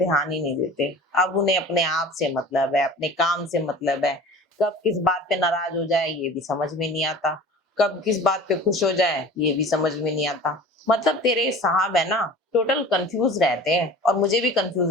ही नहीं देते। अब उन्हें अपने आप से मतलब है, अपने काम से मतलब है। कब किस बात पे नाराज हो जाए ये भी समझ में नहीं आता, कब किस बात पे खुश हो जाए ये भी समझ में नहीं आता। मतलब तेरे साहब है ना, टोटल कंफ्यूज रहते हैं और मुझे भी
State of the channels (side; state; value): both; normal; correlation 0.40